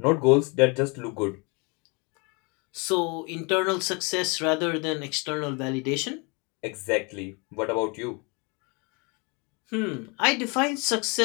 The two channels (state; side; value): quieter; right; 30.8 dB